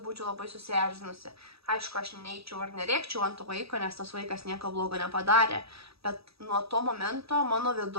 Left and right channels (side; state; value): left; late; 0.77 ms